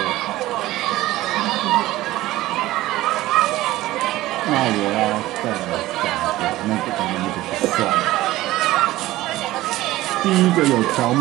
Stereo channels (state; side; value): quieter; left; 16.7 dB